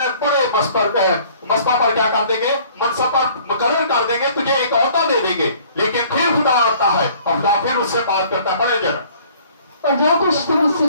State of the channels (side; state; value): both; inverted; correlation -0.55